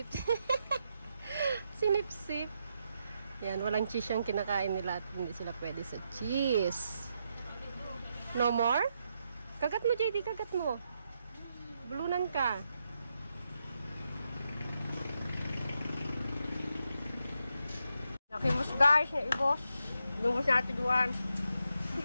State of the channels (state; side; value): inverted; both; correlation -0.83